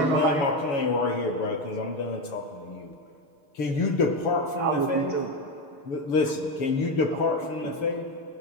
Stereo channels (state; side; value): late; right; 7.2 ms